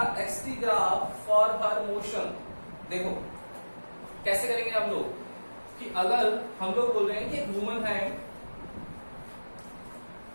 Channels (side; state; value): both; inverted; correlation -1.00